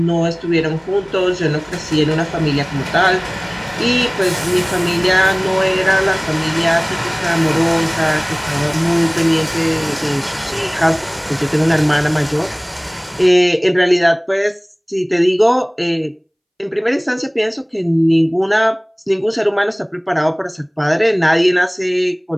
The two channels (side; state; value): both; identical; correlation 1.00